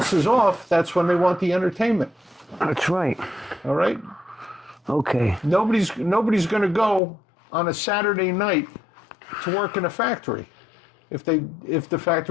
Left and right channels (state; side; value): drops out; right; at 7.0 s